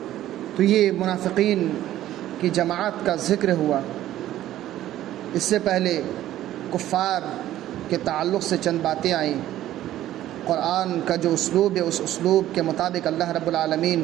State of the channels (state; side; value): quieter; left; 13.4 dB